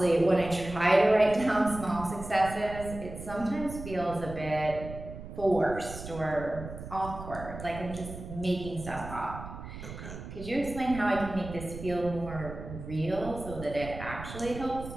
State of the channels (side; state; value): right; noise; rumble, 11 dB below the sound